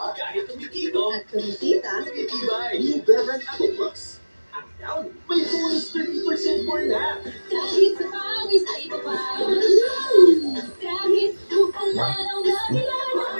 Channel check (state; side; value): inverted; both; correlation -1.00